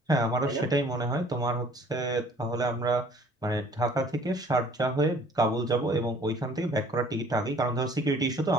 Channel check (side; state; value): both; normal; correlation 0.54